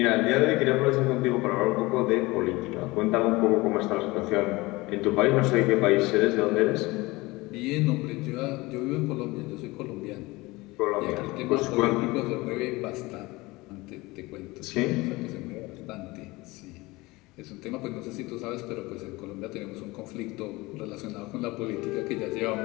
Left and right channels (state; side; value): quieter; right; 21.9 dB